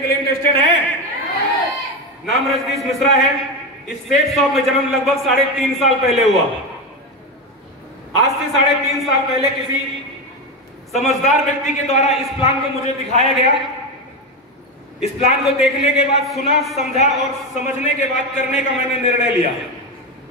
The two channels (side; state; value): both; normal; correlation 0.15